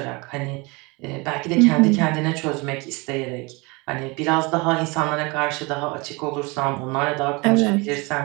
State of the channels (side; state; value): left; quieter; 26.7 dB